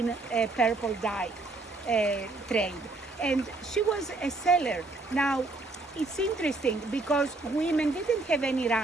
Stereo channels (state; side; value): quieter; left; 3.2 dB